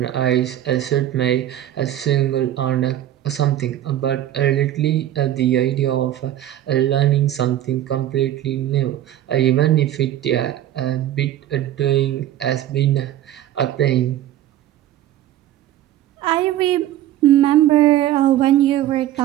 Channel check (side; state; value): left; quieter; 12.6 dB